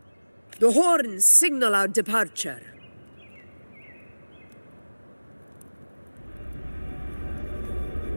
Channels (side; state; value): both; inverted; correlation -1.00